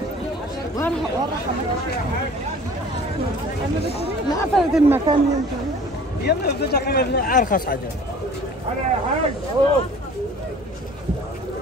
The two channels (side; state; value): both; normal; correlation 0.47